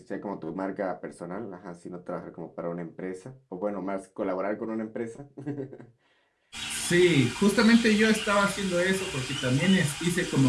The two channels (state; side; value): identical; both; correlation 1.00